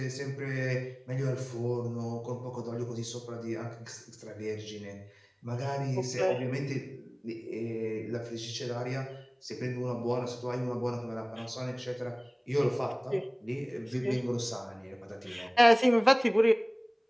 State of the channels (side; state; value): both; identical; correlation 1.00